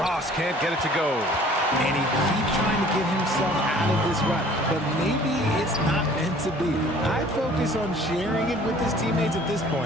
can't get it to go. And he keeps trying to get himself out of this rut, but maybe it's not meant to be. I'd focus on sharing it with his teammates at this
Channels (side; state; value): both; normal; correlation 0.52